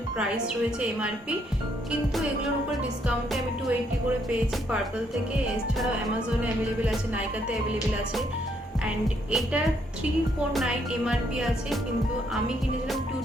প্রাইস রয়েছে এমআরপি, কিন্তু এগুলোর উপর ডিসকাউন্টে আমি 280 করে পেয়েছি পার্পল থেকে। এছাড়াও অ্যামাজনে অ্যাভেলেবেল আছে, নাইকাতে অ্যাভেলেবেল আছে। অ্যান্ড এটার 349 এমআরপি আছে, কিন্তু আমি কিনেছিলাম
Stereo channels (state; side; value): normal; both; correlation 0.72